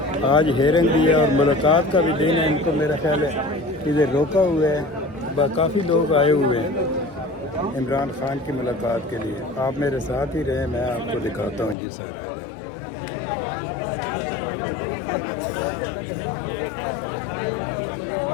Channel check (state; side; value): drops out; right; at 11.8 s